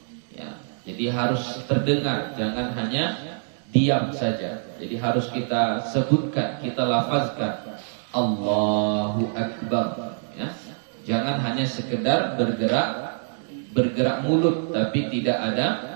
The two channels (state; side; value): silent; left; digital silence